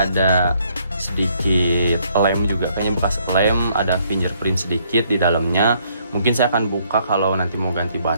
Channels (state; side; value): inverted; both; correlation -0.68